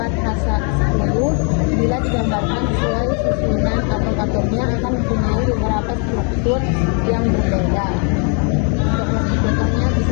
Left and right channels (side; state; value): right; quieter; 39.2 dB